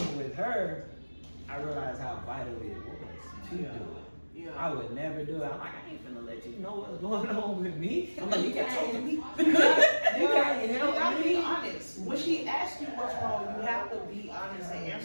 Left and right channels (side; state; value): both; inverted; correlation -1.00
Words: with her, I realized how vital it was to do it. I would never do it. I'm like, I ain't finna let you know what's going on with me. I'm like, you can't talk to me. You can't help me. Be honest. When she asks you what's wrong, you have to be honest and